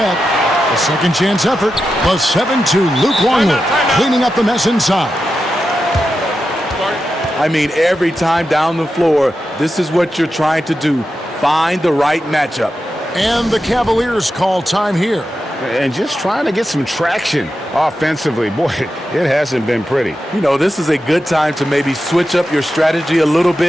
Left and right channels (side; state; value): both; normal; correlation 0.90